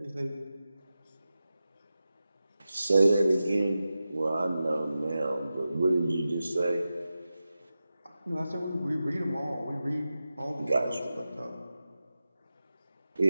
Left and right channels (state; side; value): inverted; both; correlation -0.93